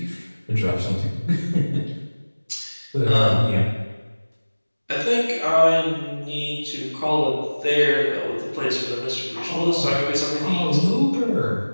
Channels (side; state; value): both; inverted; correlation -1.00